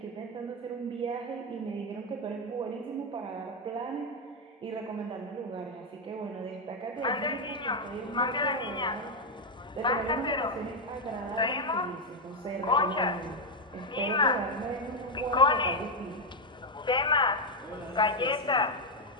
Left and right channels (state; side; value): normal; both; correlation 0.03